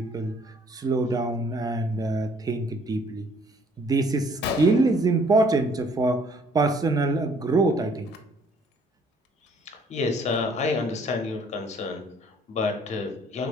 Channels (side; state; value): both; normal; correlation 0.61